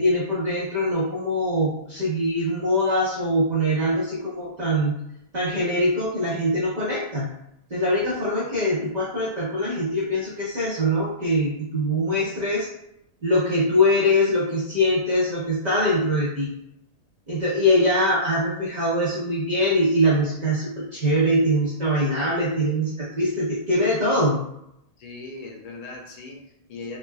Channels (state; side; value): late; right; 1.8 ms